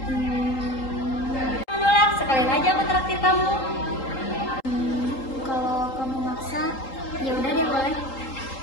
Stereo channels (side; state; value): right; late; 3.8 ms